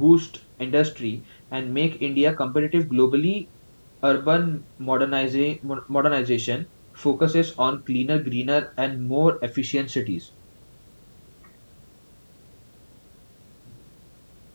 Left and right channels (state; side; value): inverted; both; correlation -1.00